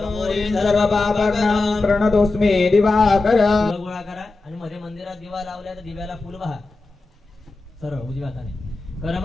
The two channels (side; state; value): right; quieter; 3.4 dB